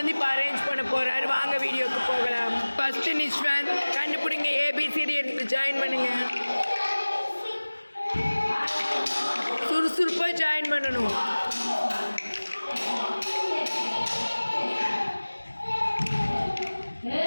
இப்போ அரேஞ்ச் பண்ண போகிறாரு. வாங்க வீடியோக்கு போகலாம். ஃபஸ்ட்டு நிஷ்வந்த் கண்டுபிடிங்க. ஏபிசிடி எடுத்து ஜாயின் பண்ணுங்க. சுறுசுறுப்பாக ஜாயின் பண்ணணும்.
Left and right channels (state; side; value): inverted; both; correlation -1.00